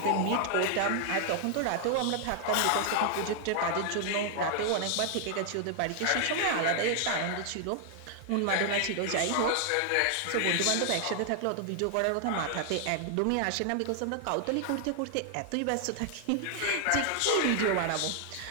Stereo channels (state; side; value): different; both; correlation 0.00